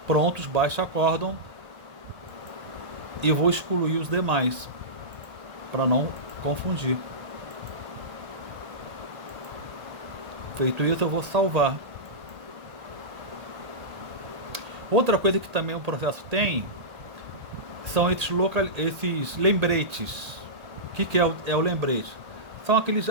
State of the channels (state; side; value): late; left; 1.8 ms